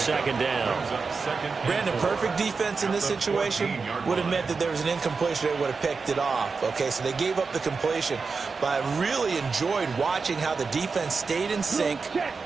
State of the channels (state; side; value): quieter; left; 4.7 dB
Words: down. Brandon, perfect defense in this situation would have meant that there was an incompletion. They would have picked it off. Okay, so they gave up the completion. But I really enjoyed watching how the defense stayed in sync,